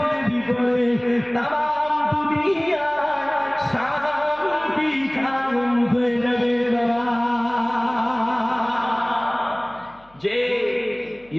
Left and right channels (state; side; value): noise; left; hum, 30 dB below the sound